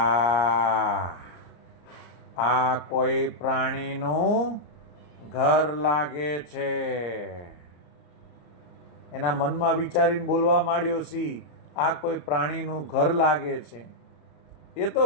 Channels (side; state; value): right; late; 34 ms